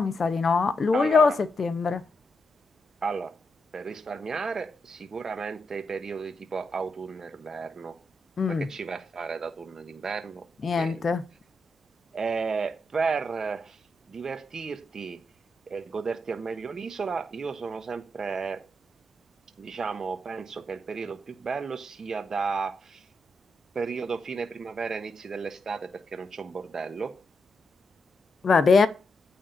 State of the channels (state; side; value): normal; both; correlation 0.83